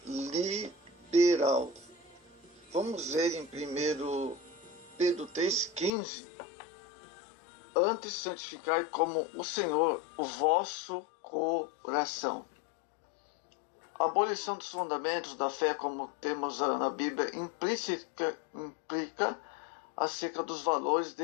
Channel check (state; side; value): drops out; right; at 5.9 s